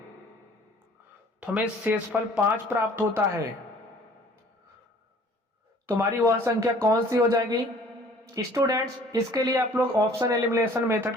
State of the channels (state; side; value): normal; both; correlation 0.53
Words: तो हमें शेषफल 5 प्राप्त होता है। तुम्हारी वह संख्या कौन सी हो जाएगी स्टूडेंट्स। इसके लिए आप लोग ऑप्शन एलिमिनेशन मेथड